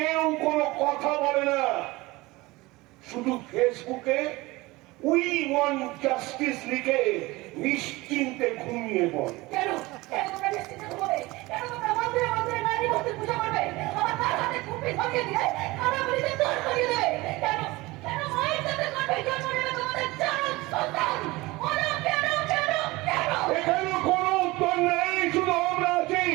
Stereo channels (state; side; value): quieter; left; 21.2 dB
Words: কোনো কথা বলে না, শুধু ফেসবুকে উই ওয়ান্ট জাস্টিস লিখে নিশ্চিন্তে ঘুমিয়ে পড়ে। কেন কেন তোমরা নিশ্চিত ঘুমোবে? কেন তোমরা মন্দিরে মন্দিরে নারী মূর্তির পূজা করবে? আমার তার হাতে কুপি ধরিয়ে দিয়ে কানা বলিতে দূর করিয়ে দেবে? কেন কেন মায়ের সাথে করবে জন্ম নেবে তোমাদের চার সন্তান? ওরা কেন কেন কেন? এখানে কোনো উত্তর নেই, শুধু আমরা আছি।